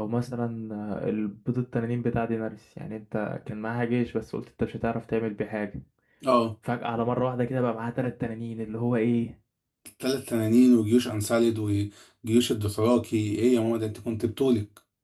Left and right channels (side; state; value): both; identical; correlation 1.00